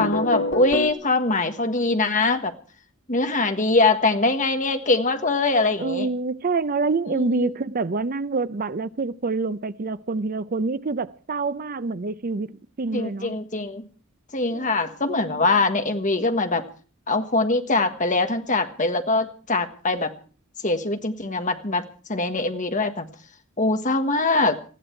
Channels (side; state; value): both; normal; correlation 0.02